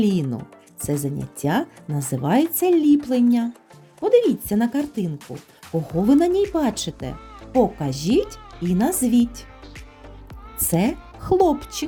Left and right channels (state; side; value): identical; both; correlation 1.00